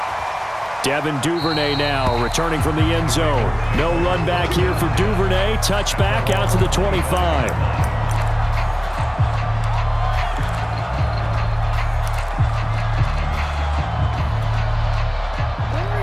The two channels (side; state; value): both; identical; correlation 1.00